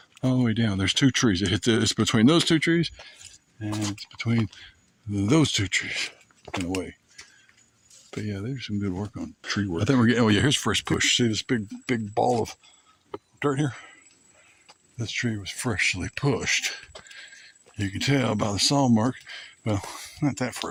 all the way down. There's two trees. It's between those two trees, and it's between those two trees, in a way. But yeah, there's some good work on tree work. I think we're getting, oh yeah, here's fresh push. See this big ball of dirt here? This tree was freshly pushed. You can tell by the saw mark. Well, not that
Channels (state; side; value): identical; both; correlation 1.00